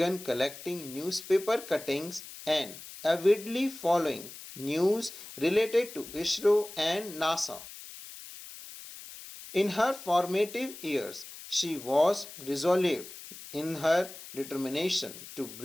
collecting newspaper cuttings and avidly following news related to ISRO and NASA. In her formative years, she was resolute in her determination to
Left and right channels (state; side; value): noise; left; hiss, 14 dB below the sound